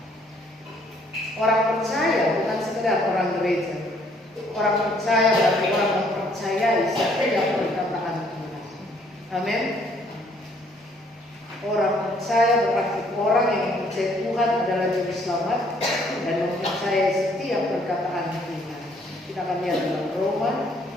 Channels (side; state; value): both; normal; correlation 0.64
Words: Orang percaya bukan sekedar orang gereja. Orang percaya berarti orang mempercayai setiap perkataan Tuhan. Amin. Orang percaya berarti orang yang percaya Tuhan adalah juru selamat dan mempercayai setiap perkataan Tuhan. Kita akan lihat dalam Roma